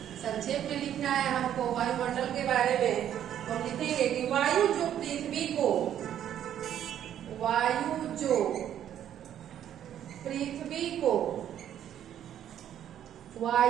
संक्षेप में लिखना है हमको वायुमंडल के बारे में। तो हम लिखेंगे कि वायु जो पृथ्वी को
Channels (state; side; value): quieter; left; 10.5 dB